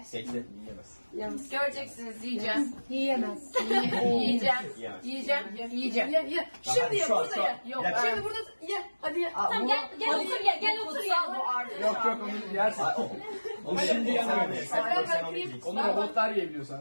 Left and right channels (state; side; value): inverted; both; correlation -1.00